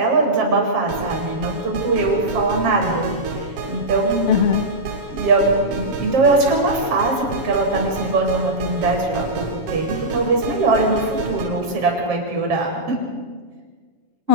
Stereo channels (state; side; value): late; left; 7.5 ms